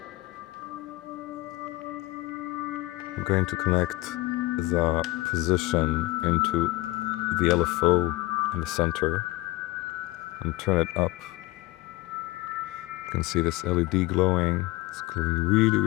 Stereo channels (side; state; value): right; quieter; 20.2 dB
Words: I'm going to connect the position into the LFO in the center and turn it up. You can see this LED glowing. It's glowing really,